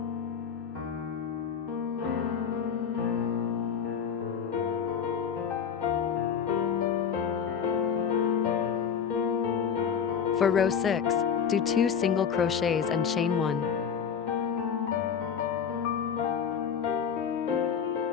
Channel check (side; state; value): right; quieter; 7.3 dB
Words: For row 6, do 2 single crochets and chain